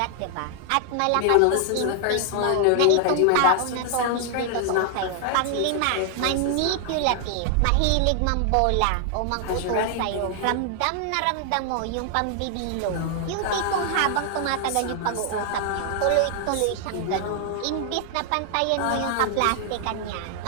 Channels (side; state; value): both; different; correlation 0.00